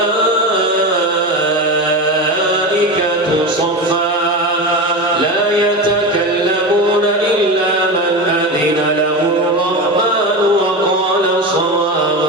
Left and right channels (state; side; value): normal; both; correlation 0.22